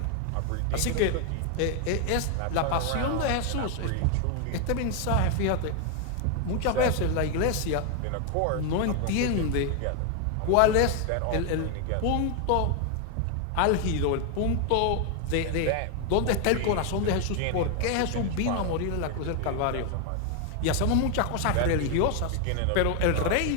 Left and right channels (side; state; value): both; different; correlation 0.01